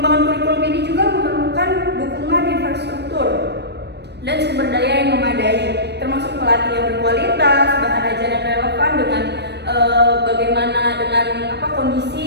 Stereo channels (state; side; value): late; left; 0.49 ms